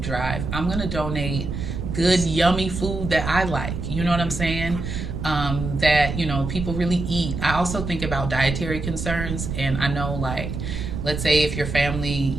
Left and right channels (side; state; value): right; noise; rumble, 5 dB below the sound